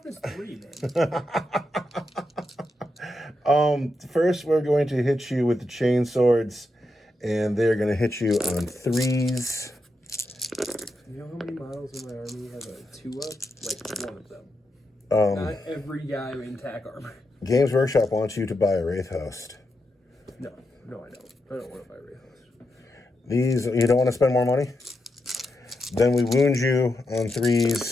3, man. First, we're going to hit you with the chain swords, and they're going to hit you on 3s. You know how many models in my army have a 2-up? Like 1 of them. Not every guy in tack armor. Games Workshop wants you to buy a Wraith Host. No, I don't. I don't want to buy Wraith Host. These, you don't want to spend more money? Then we wound you on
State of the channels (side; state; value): both; normal; correlation 0.85